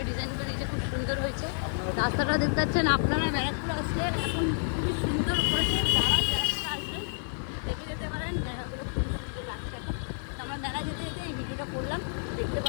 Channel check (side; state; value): right; silent; digital silence